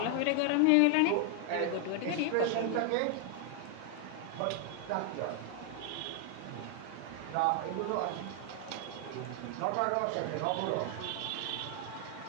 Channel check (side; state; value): both; different; correlation 0.00